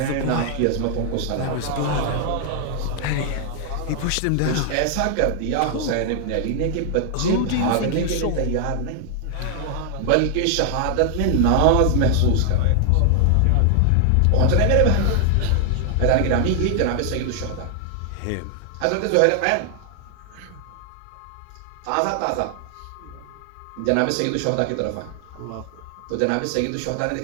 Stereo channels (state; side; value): different; both; correlation 0.00